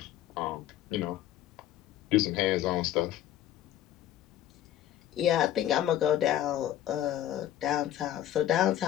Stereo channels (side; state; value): right; quieter; 12.2 dB